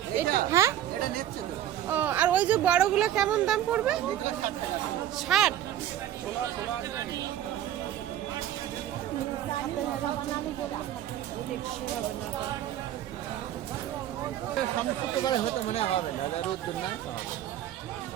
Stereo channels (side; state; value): left; quieter; 12.0 dB